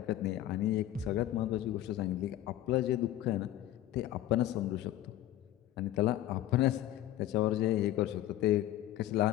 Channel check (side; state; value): right; quieter; 13.6 dB